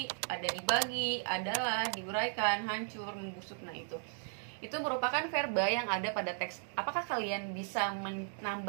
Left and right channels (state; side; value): silent; left; 54 dB below the other